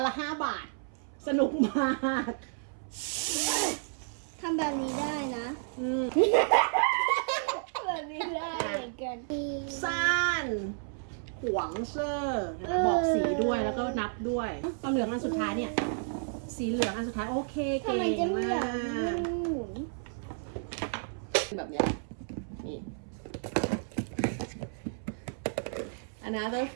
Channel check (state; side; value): silent; left; 57 dB below the other